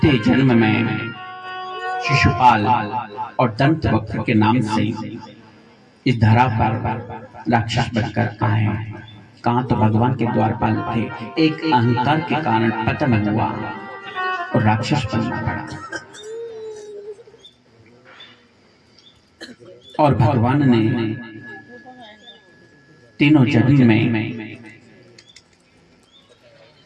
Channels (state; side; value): identical; both; correlation 1.00